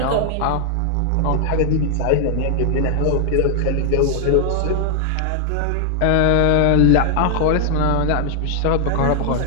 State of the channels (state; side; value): different; both; correlation 0.00